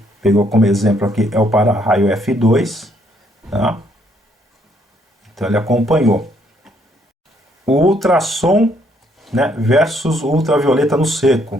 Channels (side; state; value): both; normal; correlation 0.69